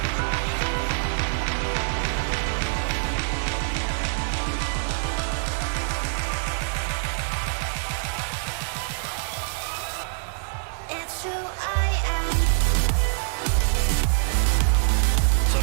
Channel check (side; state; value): left; silent; digital silence